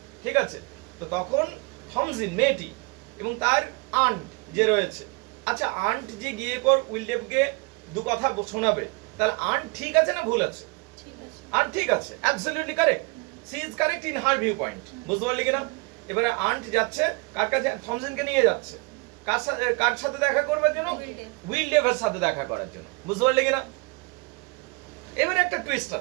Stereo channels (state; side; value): quieter; left; 29.5 dB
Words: ঠিক আছে। তো তখন থমজিন মেয়েটি এবং তার আন্ট যে রয়েছে, আচ্ছা আন্ট যে গিয়ে পর উইলডেভকে দু কথা শোনাবে, তাহলে আন্ট ঠিক আছে না ভুল আছে, আন্ট ঠিক আছে, absolutely correct, she is correct in her view point, বুঝতে পারলি কিনা। এবারে আন্ট যাচ্ছে কার কাছে, থমজিনকে নিয়ে যাচ্ছে কার সাথে দেখা করবার জন্য, উইলডেভের সাথে দেখা করার জন্য, বুঝতে পারলি কিনা। এবারে একটা টুইস্ট